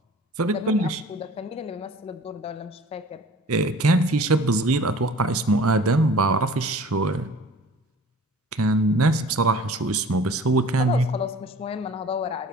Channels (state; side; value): normal; both; correlation 0.46